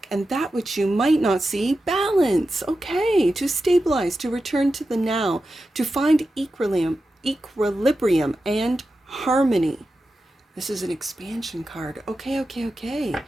And that which you might not see, balance. Okay, to stabilize, to return to the now, to find equilibrium and harmony. This is an expansion card. Okay.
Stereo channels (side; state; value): both; normal; correlation 0.91